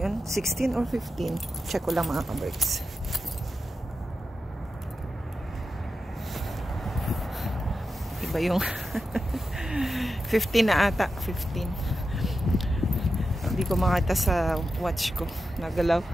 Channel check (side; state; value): both; normal; correlation 0.90